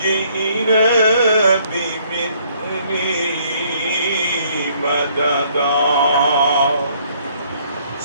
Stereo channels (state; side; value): inverted; both; correlation -0.64